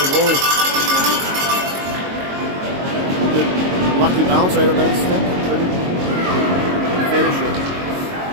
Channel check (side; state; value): left; late; 22 ms